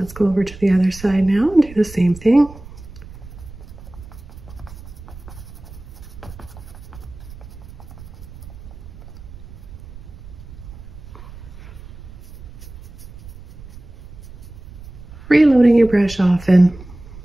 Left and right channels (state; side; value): noise; right; rumble, 16 dB below the sound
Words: go over to the other side now and do the same thing. Reloading your brush often.